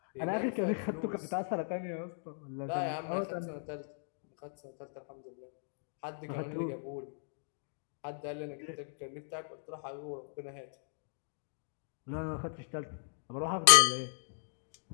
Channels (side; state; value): right; silent; digital silence